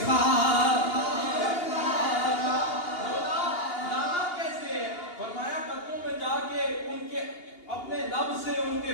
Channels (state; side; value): late; right; 2.8 ms